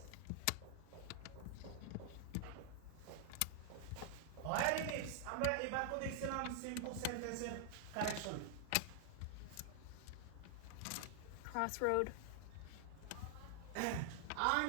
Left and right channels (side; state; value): both; different; correlation 0.00